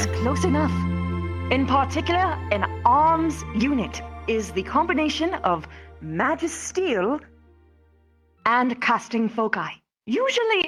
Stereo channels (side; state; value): both; identical; correlation 1.00